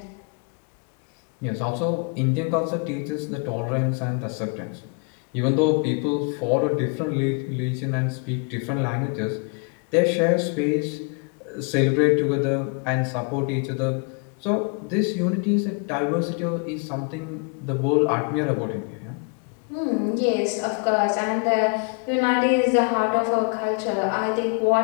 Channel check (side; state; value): right; quieter; 36.3 dB